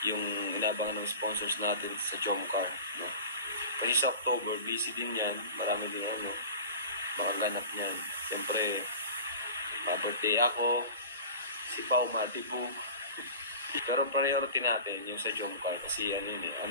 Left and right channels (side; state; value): both; inverted; correlation -0.36